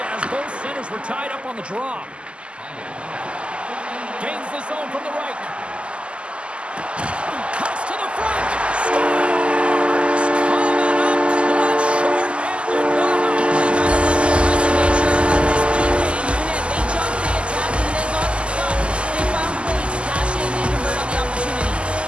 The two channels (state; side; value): late; left; 0.053 ms